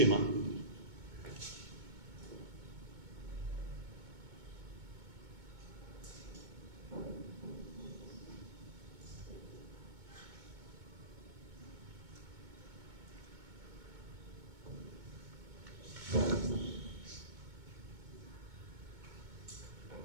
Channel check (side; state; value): left; late; 2.2 ms